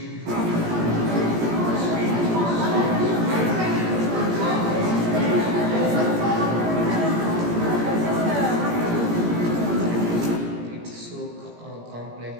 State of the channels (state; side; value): late; left; 17 ms